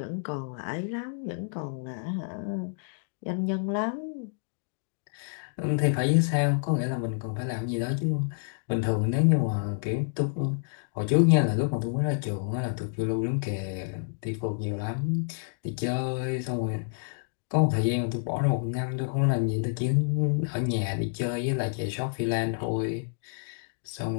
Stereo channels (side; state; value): right; silent; digital silence